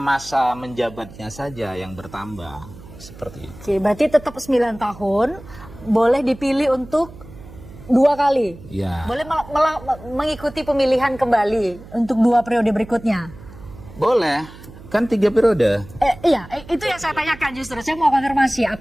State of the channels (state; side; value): noise; right; hum, 18 dB below the sound